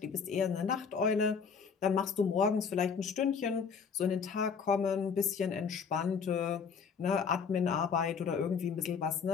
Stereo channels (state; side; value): quieter; right; 6.1 dB